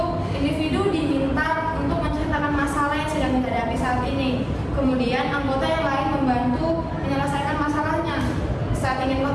individu diminta untuk menceritakan masalah yang sedang dihadapi saat ini. Kemudian anggota yang lain membantu menyelesaikan masalahnya. Saat ingin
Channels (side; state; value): both; identical; correlation 1.00